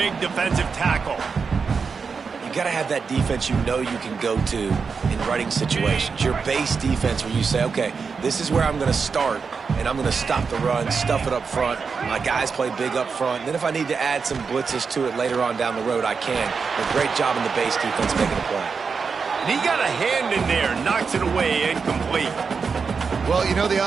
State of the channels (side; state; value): left; quieter; 5.4 dB